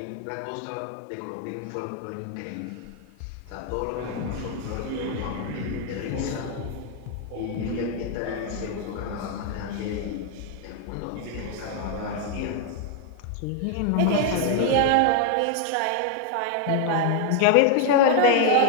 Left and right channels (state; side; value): different; both; correlation 0.00